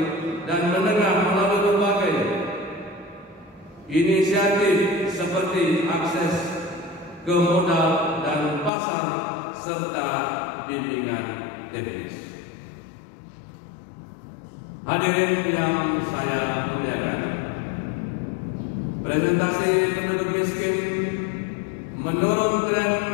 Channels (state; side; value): drops out; right; at 8.7 s